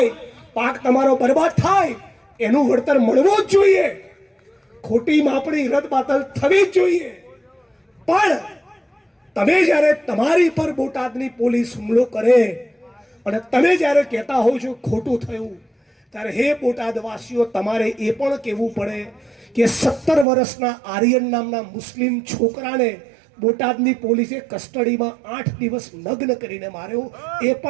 પાક તમારો બરબાદ થાય, એનું વળતર મળવું જ જોઈએ. ખોટી માપણી રદબાતલ થવી જ જોઈએ. પણ તમે જ્યારે તમારી પર બોટાદની પોલીસ હુમલો કરે અને તમે જ્યારે કહેતા હોવ છો ખોટું થયું, ત્યારે હે બોટાદવાસીઓ, તમારે એ પણ કહેવું પડે કે 17 વર્ષના આર્યન નામના મુસ્લિમ છોકરાને બોટાદની પોલીસે કસ્ટડીમાં 8 દિવસ નગ્ન કરીને માર્યો. એ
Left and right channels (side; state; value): left; drops out; at 20.2 s